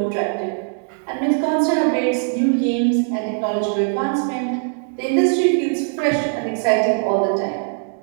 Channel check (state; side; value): silent; left; 58 dB below the other